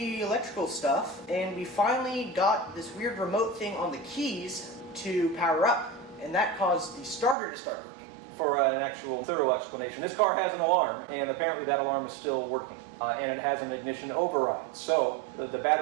electrical stuff, and we finally got this weird remote thing on the keys to power up, and that caused the starter to start working. For an actual thorough explanation, this car has an alarm, and apparently that alarm is still working, and it has an ignition override. So the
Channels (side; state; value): left; drops out; at 7.4 s